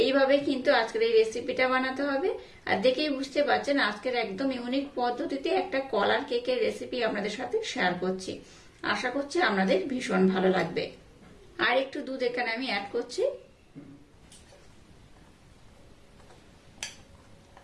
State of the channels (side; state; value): both; identical; correlation 1.00